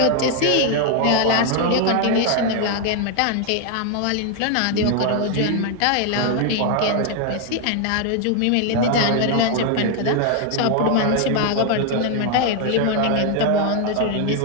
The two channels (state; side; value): different; both; correlation 0.00